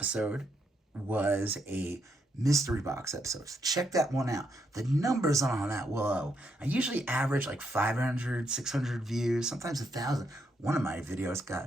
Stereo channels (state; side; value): normal; both; correlation 0.78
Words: was a mystery box episode. So check that one out. The numbers on that, whoa. I usually average like 500, 600 views, sometimes 1,000. One of my videos